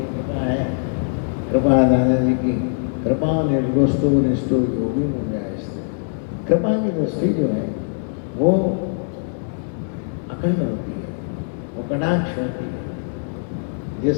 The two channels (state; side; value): silent; right; 64 dB below the other